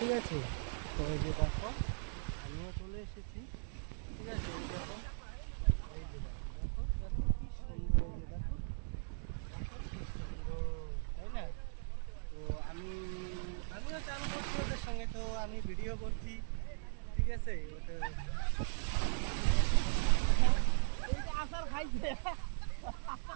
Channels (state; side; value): silent; left; digital silence